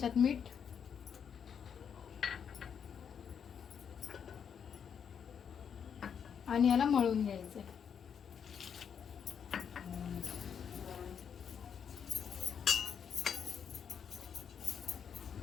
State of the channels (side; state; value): right; quieter; 7.5 dB